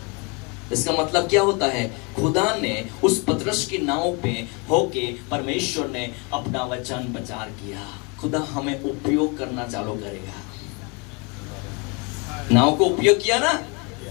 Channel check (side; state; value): right; quieter; 31.3 dB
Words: इसका मतलब क्या होता है? खुदा ने उस पतरस की नाव पे होके परमेश्वर ने अपना वचन प्रचार किया। खुदा हमें उपयोग करना चालू करेगा। नाव को उपयोग किया ना।